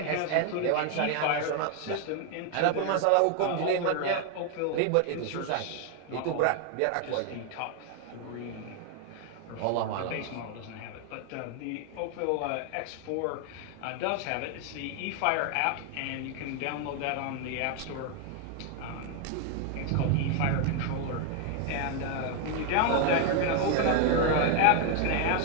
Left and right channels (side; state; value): both; different; correlation 0.01